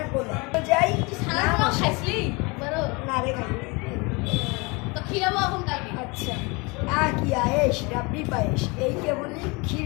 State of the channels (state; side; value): quieter; right; 27.6 dB